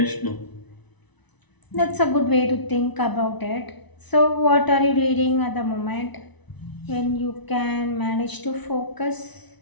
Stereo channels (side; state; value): right; late; 1.0 ms